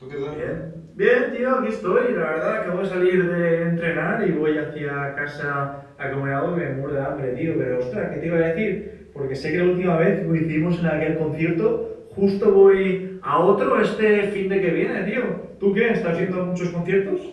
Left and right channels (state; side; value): identical; both; correlation 1.00